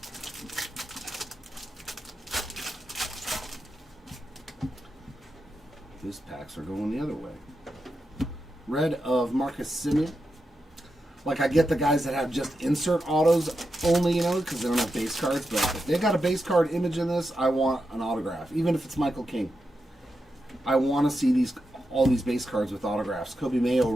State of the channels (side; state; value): both; normal; correlation 0.88